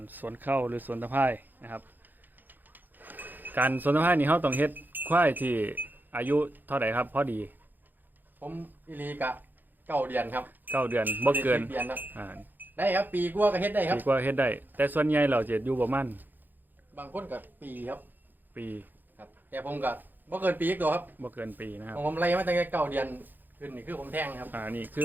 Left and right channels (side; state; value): left; late; 0.088 ms